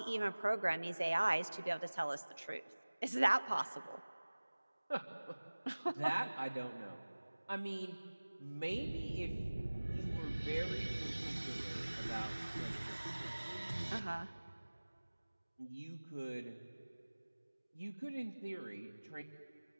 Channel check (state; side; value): inverted; both; correlation -1.00